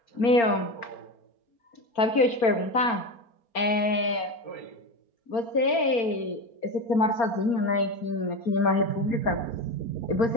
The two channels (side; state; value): right; late; 4.3 ms